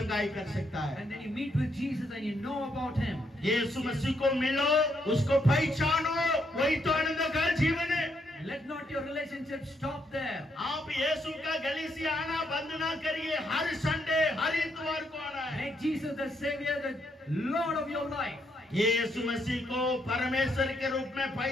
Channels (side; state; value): both; normal; correlation 0.75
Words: कर सकता है। And then you meet with Jesus and you know about Him. यीशु मसीह को मिलो, उसको पहचानो, वही तो आनंद का जीवन है। Let not your relationship stop there. आप यीशु का गली से आना बंद ना करिए, हर संडे हर इतवार को आना है। Make Jesus the Savior, the Lord of your life. यीशु मसीह को परमेश्वर के रूप में